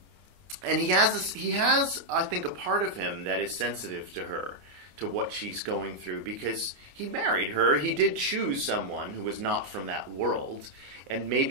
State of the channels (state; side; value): late; left; 28 ms